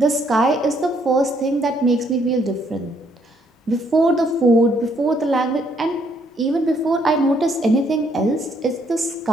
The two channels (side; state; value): both; normal; correlation 0.69